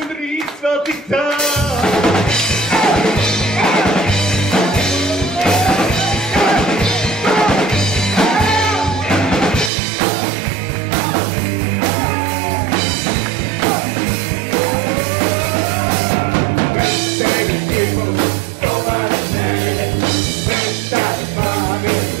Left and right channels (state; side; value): drops out; left; at 9.7 s